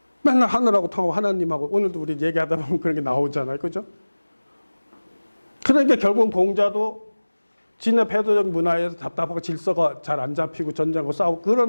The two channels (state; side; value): inverted; both; correlation -1.00